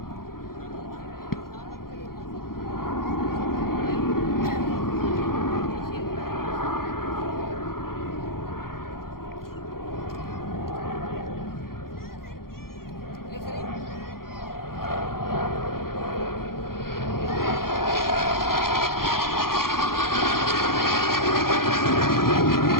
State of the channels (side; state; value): right; late; 0.92 ms